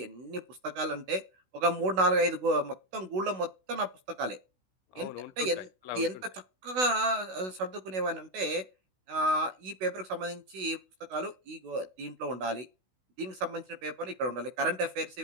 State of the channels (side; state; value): left; late; 16 ms